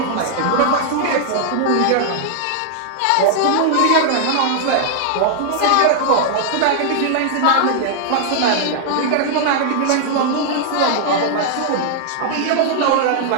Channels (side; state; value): both; different; correlation -0.01